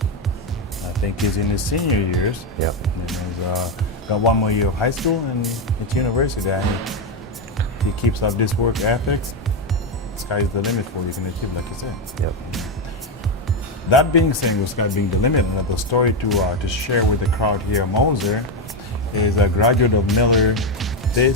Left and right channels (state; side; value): normal; both; correlation 0.08